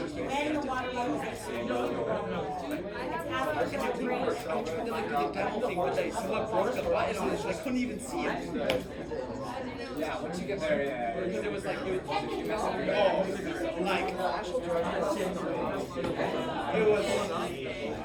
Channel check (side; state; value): both; identical; correlation 1.00